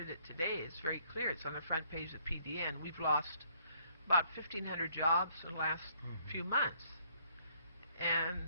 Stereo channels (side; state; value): both; inverted; correlation -0.66